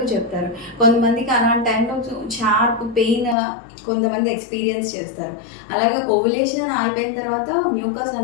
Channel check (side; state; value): right; drops out; at 3.4 s